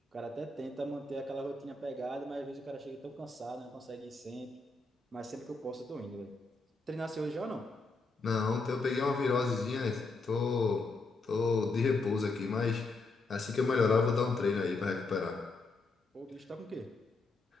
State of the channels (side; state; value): right; quieter; 3.6 dB